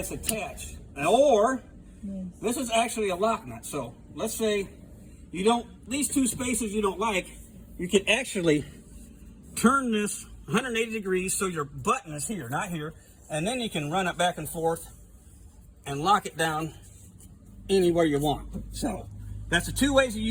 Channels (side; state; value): both; identical; correlation 1.00